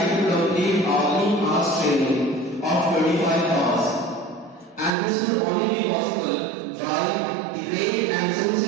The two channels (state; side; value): drops out; left; at 4.9 s